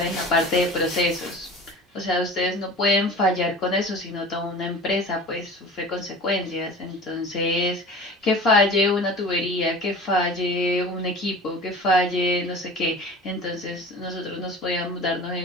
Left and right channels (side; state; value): both; normal; correlation 0.38